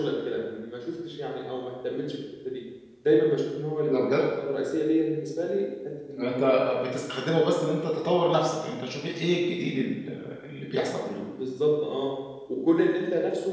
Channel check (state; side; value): identical; both; correlation 1.00